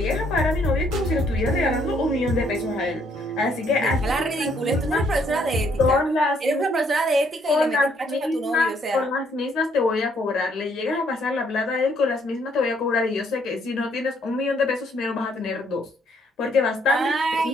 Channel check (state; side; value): normal; both; correlation 0.68